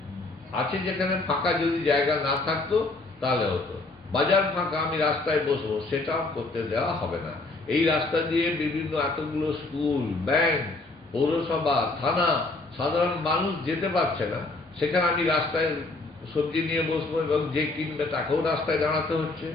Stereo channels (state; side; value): quieter; right; 3.2 dB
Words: আছে যেখানে ফাঁকা যদি জায়গা না থাকতো তাহলে হতো। বাজার ফাঁকা, আমি রাস্তায় বসবো, সেটাও করতে দেওয়া হবে না। এই রাস্তা দিয়ে বিভিন্ন এতগুলো স্কুল, ব্যাংক, পৌরসভা, থানা, সাধারণ মানুষ যেতে পারছে না, সেখানে আমি রাস্তায় সবজি নিয়ে বসবো এবং যে কিনবে তাকেও রাস্তায় দাঁড়াতে হচ্ছে,